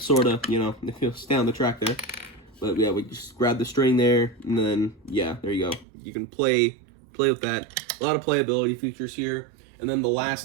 of, you know, if he'll stay on the track there. But yeah, we just grab the string there, and then yeah, there you go. You can play with that. A lot of playability features here. And then the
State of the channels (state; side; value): drops out; left; at 5.9 s